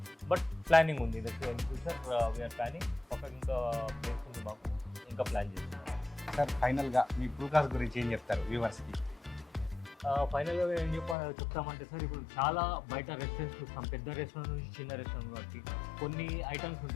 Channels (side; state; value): right; drops out; at 11.2 s